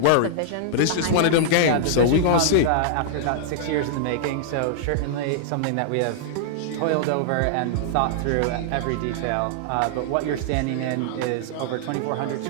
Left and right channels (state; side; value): different; both; correlation -0.01